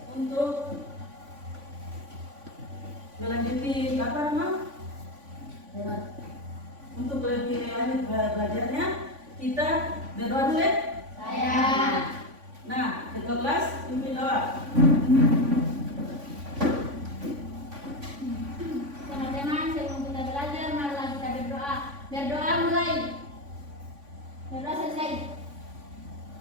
untuk melanjuti apa nama? Untuk lebih lanjut belajarnya, kita berdoa dulu ya. Saya. Nah, ketua kelas pimpin doa. Teman-teman, sebelum kita belajar, marilah kita berdoa. Berdoa mulai. Berdoa selesai.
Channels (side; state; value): left; late; 3.5 ms